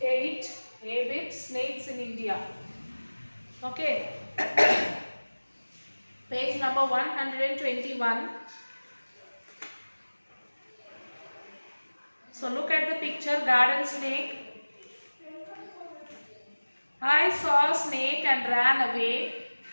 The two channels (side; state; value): both; inverted; correlation -1.00